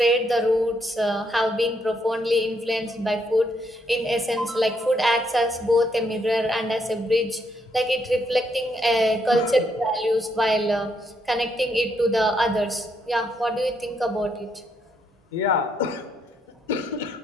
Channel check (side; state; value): both; normal; correlation 0.75